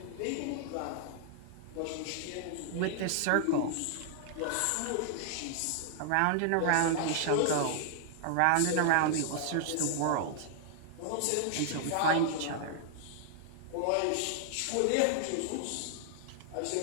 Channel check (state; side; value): different; both; correlation -0.01